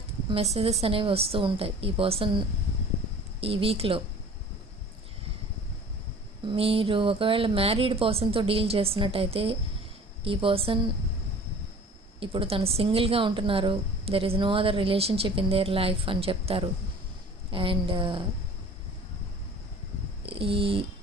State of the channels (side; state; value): both; normal; correlation 0.46